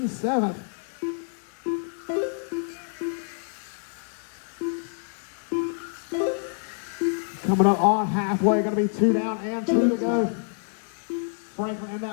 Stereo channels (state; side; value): silent; right; 60 dB below the other